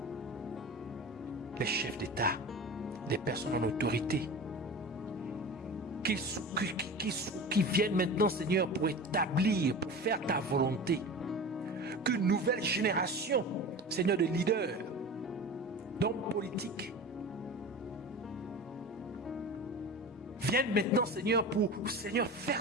les chefs d'État, les personnes en autorité, qui viennent maintenant, Seigneur, pour établir, pour faire ta volonté. Qu'une nouvelle génération, Seigneur, de leaders, d'hommes politiques, viennent maintenant, Seigneur, pour, Seigneur, faire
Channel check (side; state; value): both; normal; correlation 0.32